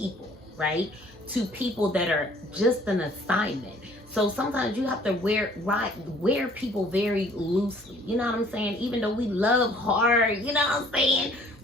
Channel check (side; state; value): both; normal; correlation 0.56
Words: right? To people that are just an assignment. So sometimes you have to wear people very loosely. You know what I'm saying? Even though we love hard, you know what I'm saying?